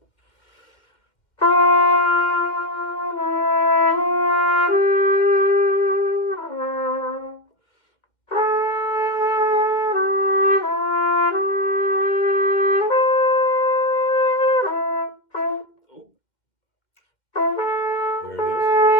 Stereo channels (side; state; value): right; late; 2.1 ms